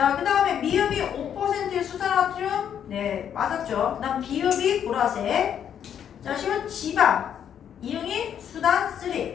그 다음에 미음이 5%의 수산화흄. 네, 맞았죠? 그 다음 비읍이 보라색. 자, 시은 지방. 이응이 수단 3.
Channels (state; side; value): quieter; right; 9.0 dB